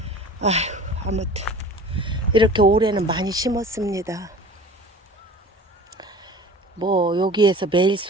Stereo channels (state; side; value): normal; both; correlation 0.41